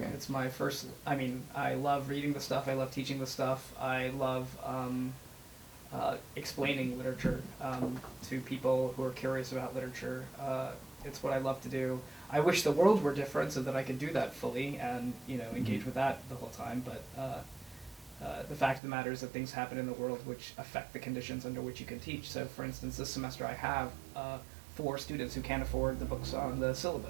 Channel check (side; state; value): left; drops out; at 18.8 s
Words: It's my first. I mean, I love reading the stuff. I love teaching the stuff. I love explaining literature to people who are curious about literature. It's what I love to do. I wish the world were different so that I could do that fully and engage with that the whole time. But the fact of the matter is that things happen in the world which affect the conditions under which you can teach. So, for instance, this semester I have 4 students who can't afford the books on the